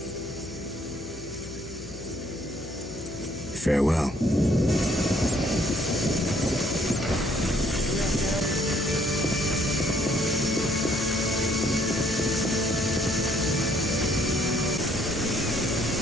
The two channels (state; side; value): noise; left; hum, 16 dB below the sound